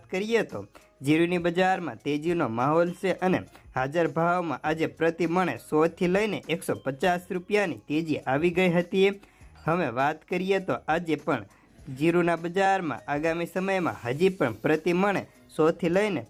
કરીએ તો જીરુની બજારમાં તેજીનો માહોલ છે અને હાજર ભાવમાં આજે પ્રતિ મણે 100 થી લઈને 150 રૂપિયાની તેજી આવી ગઈ હતી। હવે વાત કરીએ તો આજે પણ જીરુના બજારમાં આગામી સમયમાં હજી પણ પ્રતિ મણે 100 થી લઈને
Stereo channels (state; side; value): identical; both; correlation 1.00